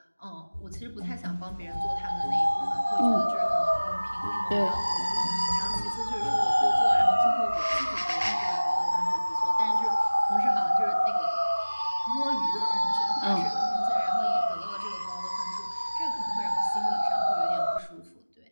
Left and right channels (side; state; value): both; inverted; correlation -1.00